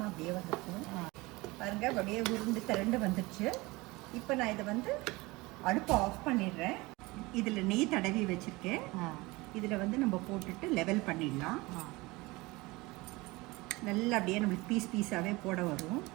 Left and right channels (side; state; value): left; quieter; 22.5 dB